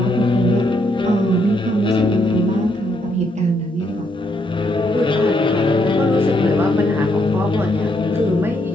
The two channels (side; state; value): both; normal; correlation 0.75